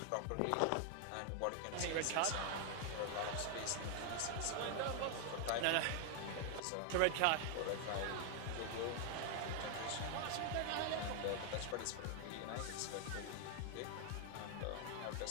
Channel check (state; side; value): different; both; correlation 0.00